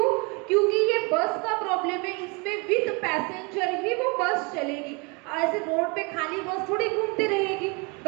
क्योंकि ये बस का प्रॉब्लम है, इसमें विद पैसेंजर ही वो बस चलेगी। ऐसे रोड पे खाली बस थोड़ी घूमती रहेगी,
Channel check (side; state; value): left; quieter; 30.0 dB